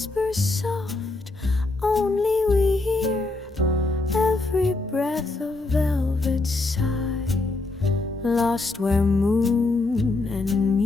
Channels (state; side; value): quieter; right; 3.2 dB